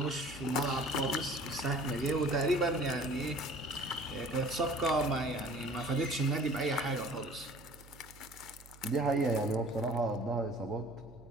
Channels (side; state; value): right; noise; hum, 21 dB below the sound